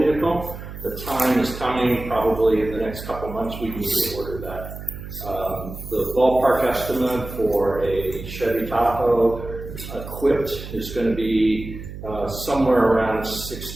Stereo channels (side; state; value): right; noise; hum, 11 dB below the sound